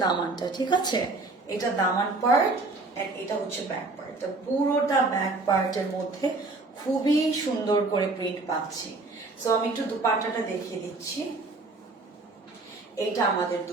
দামানটা, ঠিক আছে? এটা দামান পার্ট এন্ড এটা হচ্ছে ব্যাক পার্ট। পুরোটা ব্যাক পার্টের মধ্যে খুবই সুন্দর করে প্রিন্ট পাচ্ছি। সো আমি একটু দুপাট্টাটা দেখিয়ে দিচ্ছি। এইটা আমাদের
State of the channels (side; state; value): left; quieter; 3.5 dB